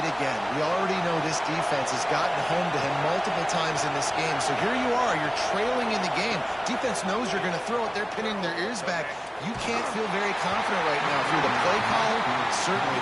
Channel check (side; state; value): both; identical; correlation 1.00